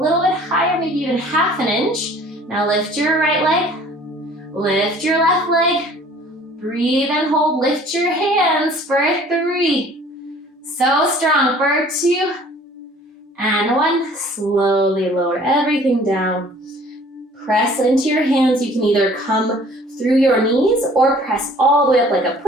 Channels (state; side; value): normal; both; correlation 0.52